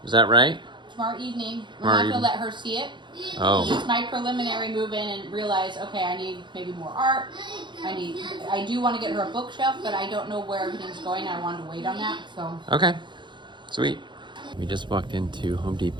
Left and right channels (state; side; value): late; left; 0.23 ms